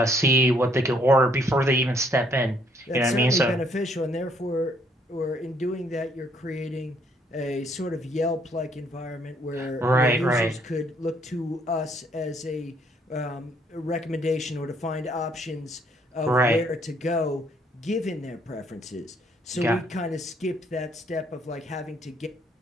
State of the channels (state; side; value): normal; both; correlation 0.67